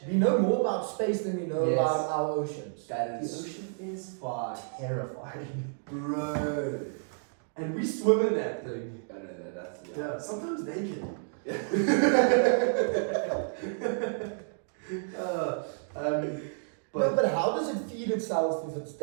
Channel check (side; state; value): left; silent; digital silence